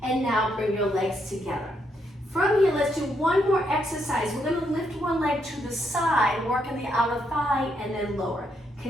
and now bring your legs together. From here, let's do 1 more exercise. We're going to lift one leg to the side, working the outer thigh, and then lower.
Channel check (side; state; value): both; normal; correlation 0.77